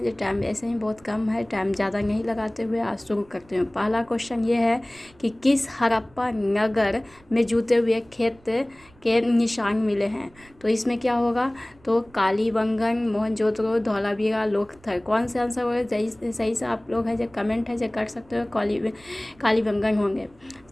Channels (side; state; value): right; noise; rumble, 28 dB below the sound